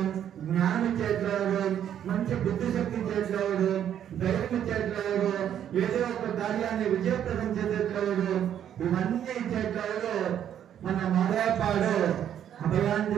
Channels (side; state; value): left; quieter; 9.9 dB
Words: జ్ఞానం ఇచ్చేట్లేదు, మంచి బుద్ధి శక్తి ఇచ్చేట్లేదు, ధైర్యం ఇచ్చేట్లేదు, ఏదో ఒక కార్యాన్ని విజయప్రదం చేసేట్లేదు, ఇవన్నీ ఇచ్చేట్లేదు మన మాదాపాడు